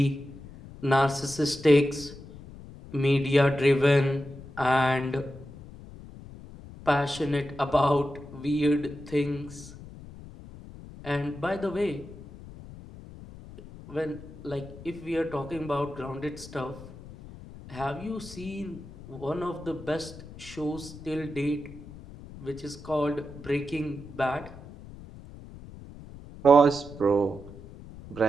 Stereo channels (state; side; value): noise; left; rumble, 16 dB below the sound